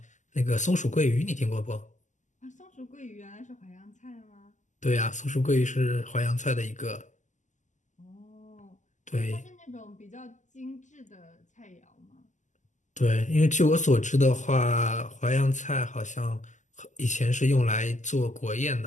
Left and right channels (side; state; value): right; late; 0.35 ms